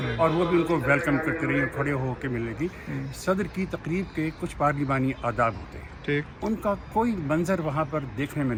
اور وہ بھی ان کو ویلکم کرتی رہی، کھڑے ہو کے ملنے کی. صدر کی تقریب کے کچھ پارلیمانی آداب ہوتے ہیں، ان کا کوئی منظر وہاں پر دیکھنے میں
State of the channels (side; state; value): both; identical; correlation 1.00